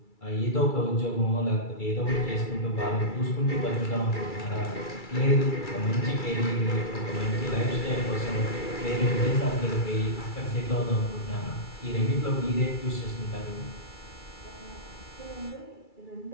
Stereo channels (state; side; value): late; right; 2.3 ms